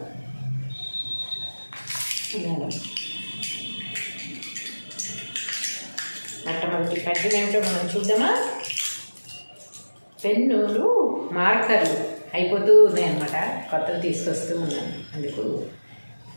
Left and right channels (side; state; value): both; inverted; correlation -1.00